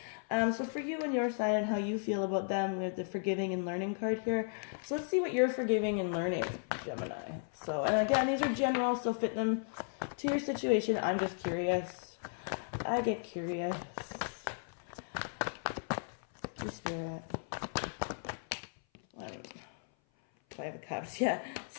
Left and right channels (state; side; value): silent; right; 54 dB below the other